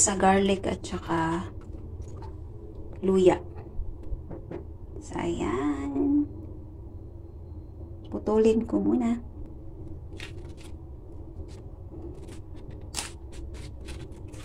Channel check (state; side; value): identical; both; correlation 1.00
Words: garlic at saka luya. So, ayan. Putulin ko muna.